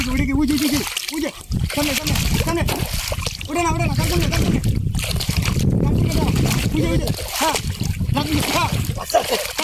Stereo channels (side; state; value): both; identical; correlation 1.00